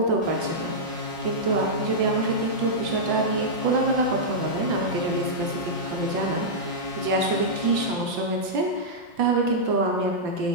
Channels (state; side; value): late; left; 5.9 ms